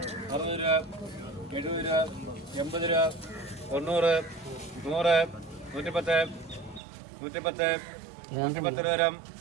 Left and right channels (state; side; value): drops out; left; at 6.8 s